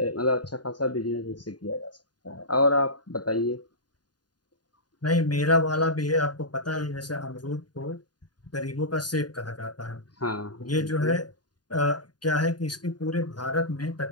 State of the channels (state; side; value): late; right; 0.70 ms